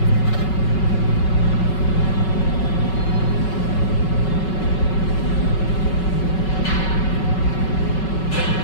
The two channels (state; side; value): late; right; 5.3 ms